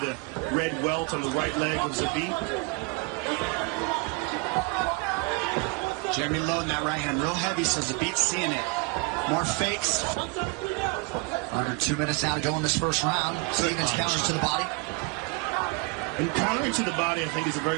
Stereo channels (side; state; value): left; quieter; 28.8 dB